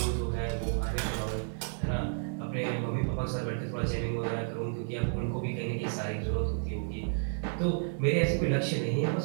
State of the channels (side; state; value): left; silent; digital silence